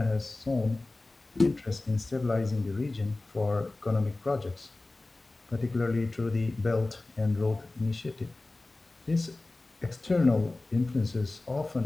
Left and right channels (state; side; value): quieter; right; 3.0 dB